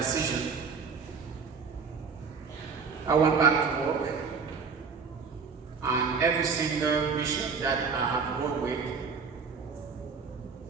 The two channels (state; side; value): quieter; left; 5.4 dB